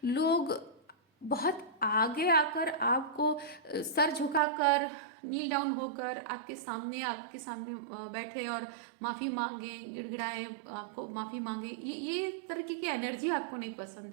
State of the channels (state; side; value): drops out; left; at 4.4 s